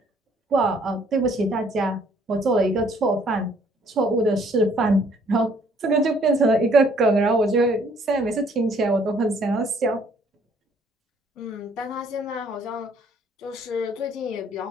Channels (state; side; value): normal; both; correlation 0.62